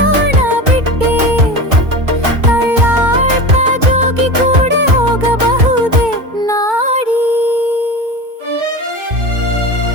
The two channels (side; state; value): left; late; 2.2 ms